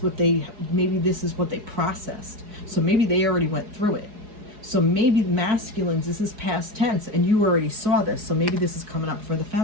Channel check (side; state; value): left; late; 4.8 ms